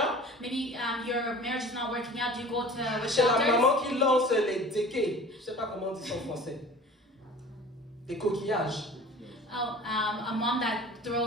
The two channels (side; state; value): both; normal; correlation 0.42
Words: Maybe your marriage is not working out. Do you go to witch Chez la doctors? maman qui lance les déquets. Je ne sais pas comment on dit ça en français. Des coquillages. Oh, a mom that